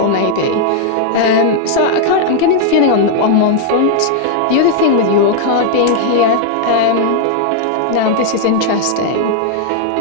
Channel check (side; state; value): both; different; correlation 0.00